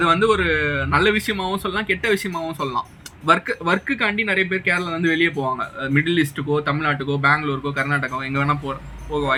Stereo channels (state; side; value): identical; both; correlation 1.00